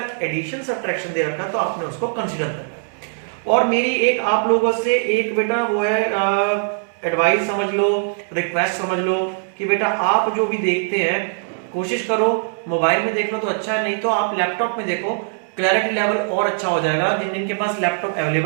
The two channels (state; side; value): silent; left; digital silence